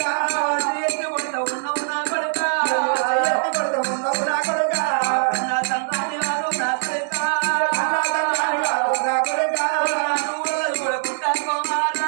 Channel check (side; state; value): left; silent; 64 dB below the other